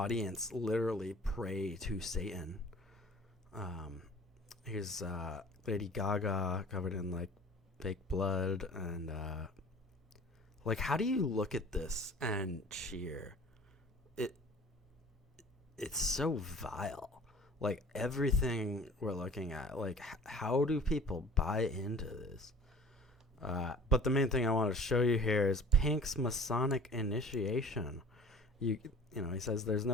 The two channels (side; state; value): both; normal; correlation 0.45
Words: literally pray to Satan. Here's Lady Gaga covered in like fake blood, and like, how do you look at this and cheer? It's so vile. Like, everything we're looking at, like, how do people buy into this? But the main thing I want to show you here is Pink's Masonic initiation. He says there's